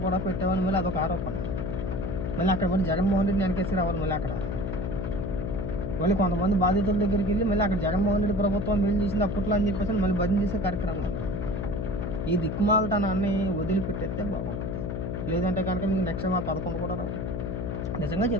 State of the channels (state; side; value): noise; left; hum, 3 dB below the sound